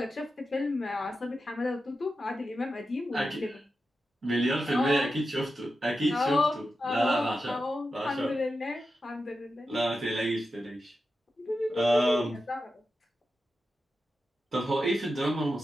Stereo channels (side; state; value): both; normal; correlation 0.90